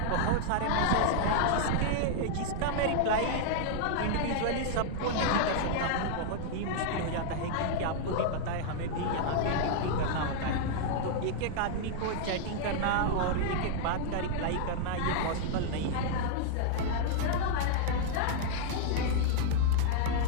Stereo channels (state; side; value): different; both; correlation -0.01